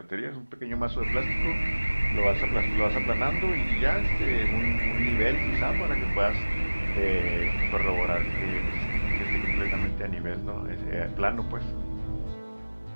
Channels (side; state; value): both; inverted; correlation -1.00